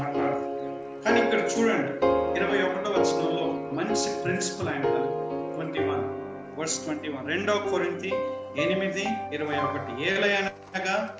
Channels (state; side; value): identical; both; correlation 1.00